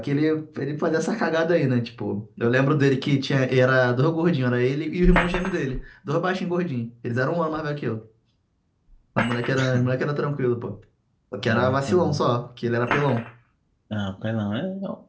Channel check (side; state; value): both; identical; correlation 1.00